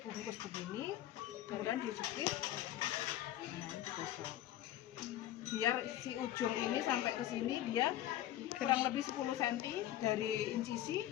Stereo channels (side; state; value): right; quieter; 13.2 dB